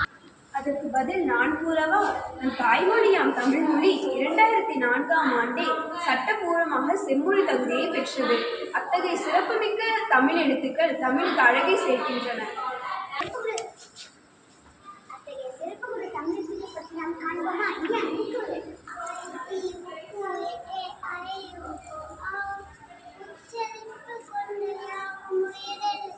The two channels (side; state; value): both; identical; correlation 1.00